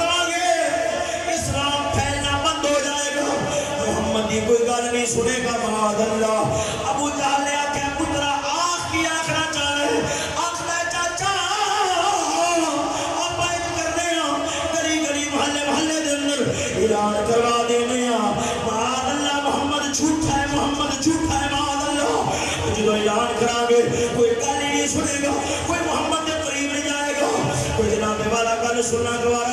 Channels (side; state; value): both; identical; correlation 1.00